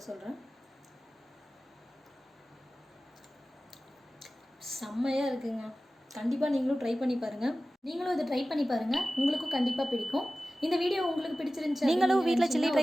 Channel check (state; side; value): normal; both; correlation 0.96